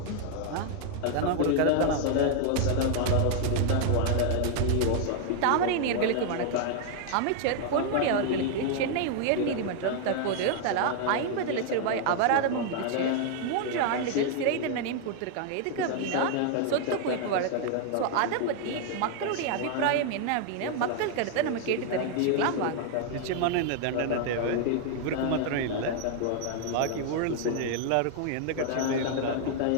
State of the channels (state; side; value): different; both; correlation 0.00